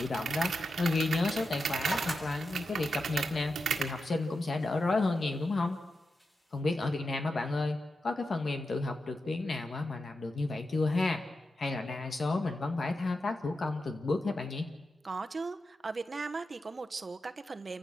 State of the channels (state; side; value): normal; both; correlation 0.89